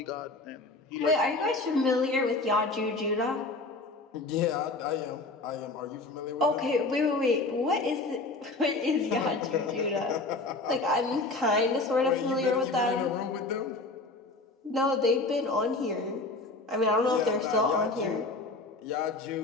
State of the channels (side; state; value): right; quieter; 3.3 dB